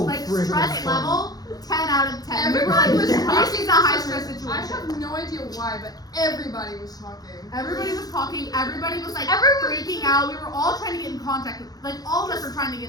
freaking stress fun. level 10 out of 10. We were everybody like, was this talking. is a high stress I situation. have no idea why, but everybody was talking. Everybody was talking. Everybody was like Everyone- freaking out. We were all trying to get in contact with, like all of us were trying to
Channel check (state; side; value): late; right; 0.19 ms